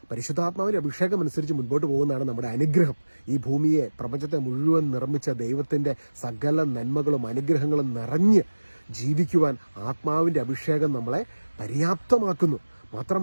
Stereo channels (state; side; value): inverted; both; correlation -1.00